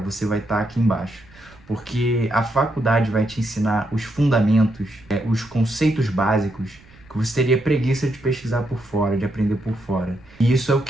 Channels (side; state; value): right; noise; rumble, 26 dB below the sound